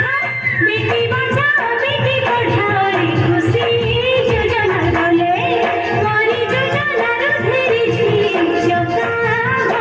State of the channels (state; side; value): identical; both; correlation 1.00